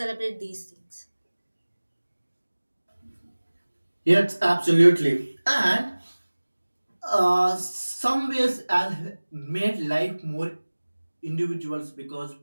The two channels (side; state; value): both; inverted; correlation -1.00